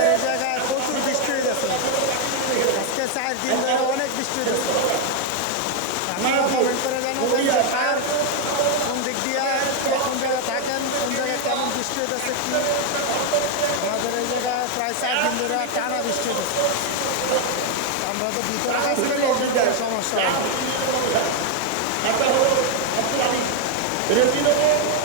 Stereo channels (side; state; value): both; different; correlation 0.01